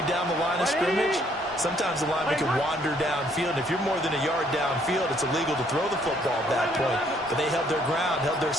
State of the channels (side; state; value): both; normal; correlation 0.66